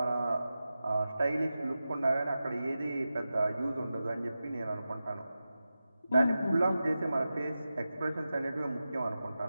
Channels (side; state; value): both; inverted; correlation -0.93